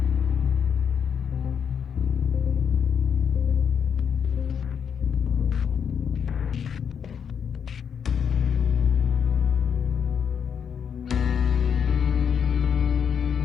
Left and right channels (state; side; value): quieter; right; 7.4 dB